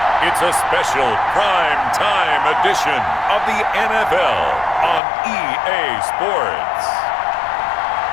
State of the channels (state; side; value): drops out; right; at 5.0 s